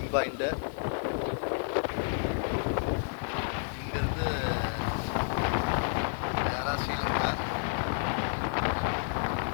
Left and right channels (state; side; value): silent; right; digital silence